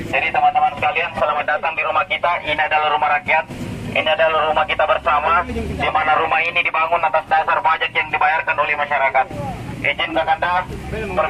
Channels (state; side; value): identical; both; correlation 1.00